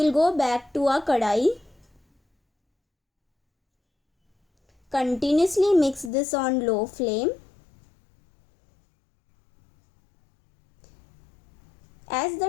go back to our kadai. Continuously mix this on low flame. As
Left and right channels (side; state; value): right; drops out; at 6.1 s